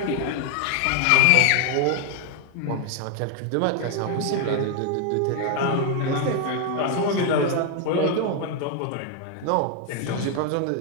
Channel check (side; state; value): both; different; correlation 0.01